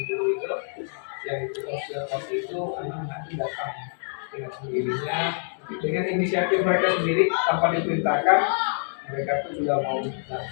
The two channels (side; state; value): right; silent; digital silence